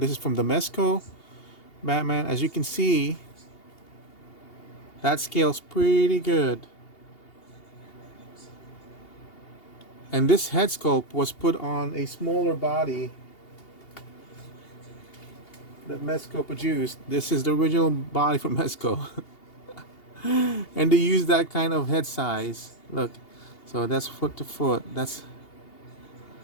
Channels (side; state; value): right; late; 2.8 ms